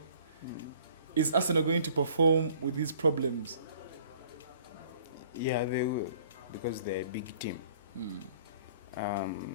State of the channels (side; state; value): both; inverted; correlation -0.54